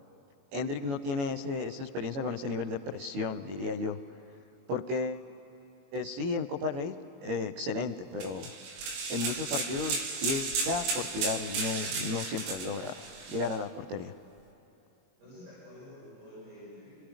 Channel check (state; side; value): late; left; 21 ms